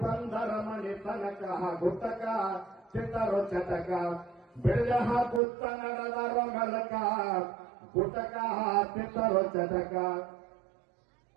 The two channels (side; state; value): left; drops out; at 5.4 s